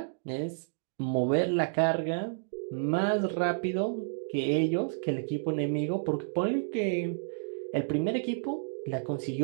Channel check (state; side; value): silent; left; digital silence